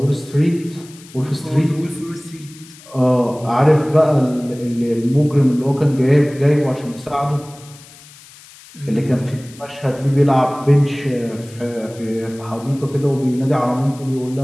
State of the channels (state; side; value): noise; left; hiss, 22 dB below the sound